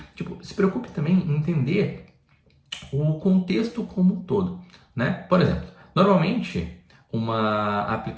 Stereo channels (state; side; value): identical; both; correlation 1.00